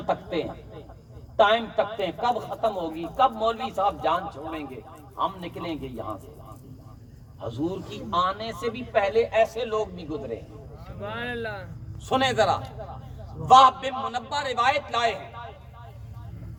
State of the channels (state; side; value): identical; both; correlation 1.00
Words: تکتے ہیں، ٹائم تکتے ہیں، کب ختم ہوگی، کب مولوی صاحب جان چھوڑیں گے، ہم نکلیں گے یہاں سے۔ حضور کی آنے سے بھی پہلے ایسے لوگ بھی گزرے ہیں۔ سبحان اللہ۔ سنیں ذرا، وہب بن منبہ روایت لائے ہیں،